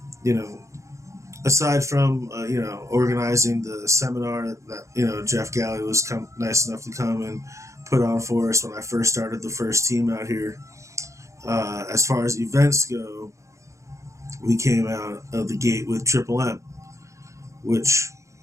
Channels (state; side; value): late; left; 0.15 ms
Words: you know, aside from organizing the seminar that Jeff Galley was nice enough to come and put on for us when I first started the first team out here. As far as events go, we came out of the gate with Triple M, which